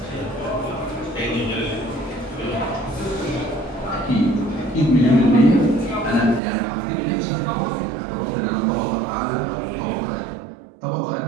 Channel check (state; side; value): drops out; left; at 6.4 s